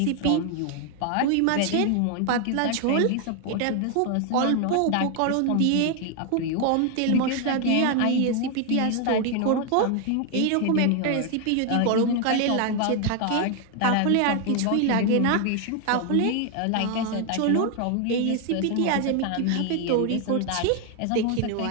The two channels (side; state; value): both; different; correlation 0.01